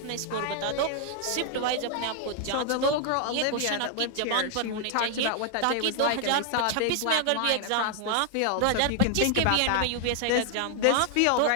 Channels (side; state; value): both; different; correlation 0.00